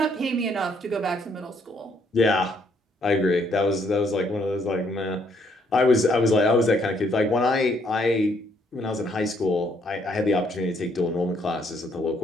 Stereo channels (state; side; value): normal; both; correlation 0.69